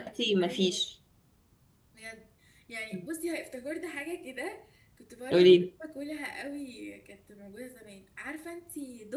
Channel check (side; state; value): both; identical; correlation 1.00